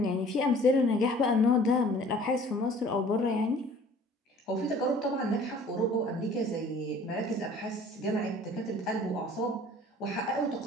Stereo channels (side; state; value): both; normal; correlation 0.50